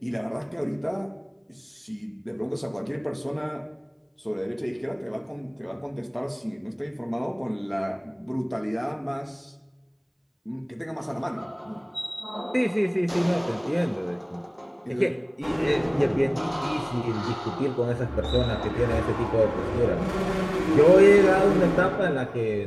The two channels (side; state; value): both; identical; correlation 1.00